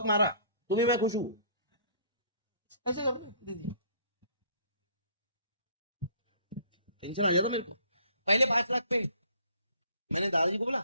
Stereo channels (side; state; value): both; inverted; correlation -0.57